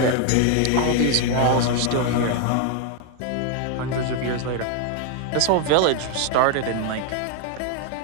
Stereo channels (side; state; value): both; different; correlation 0.01